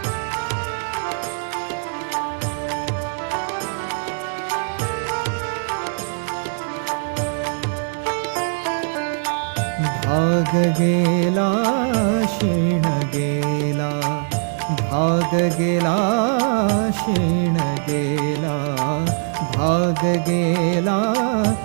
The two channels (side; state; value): left; silent; 64 dB below the other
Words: भाग गेला क्षीण गेला, भाग गेला क्षीण गेला, भाग गेला